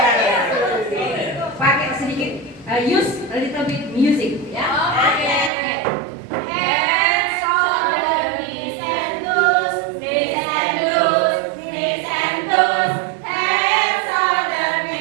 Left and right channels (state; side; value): drops out; left; at 5.5 s